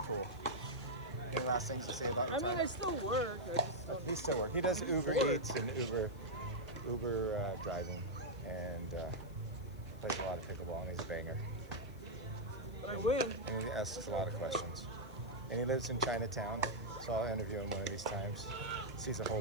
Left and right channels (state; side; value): noise; left; hiss, 26 dB below the sound